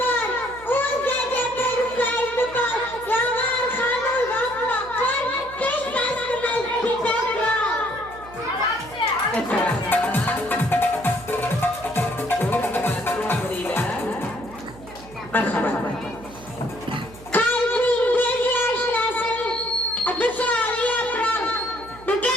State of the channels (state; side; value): noise; right; hum, 19 dB below the sound